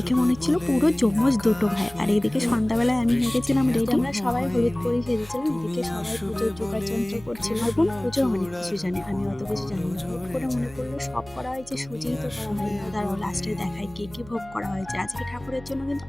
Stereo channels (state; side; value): noise; right; hum, 20 dB below the sound